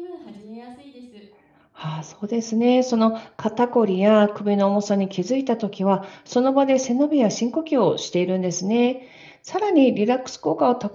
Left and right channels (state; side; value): identical; both; correlation 1.00